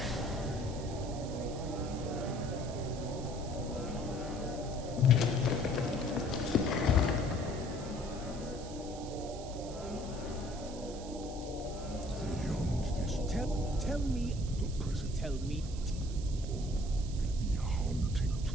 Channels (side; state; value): right; noise; hiss, 16 dB below the sound